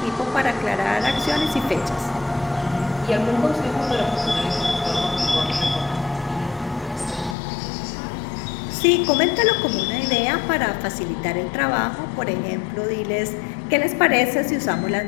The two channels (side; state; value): right; drops out; at 7.4 s